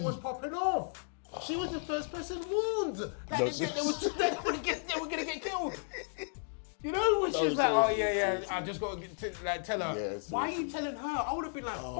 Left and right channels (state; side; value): silent; right; digital silence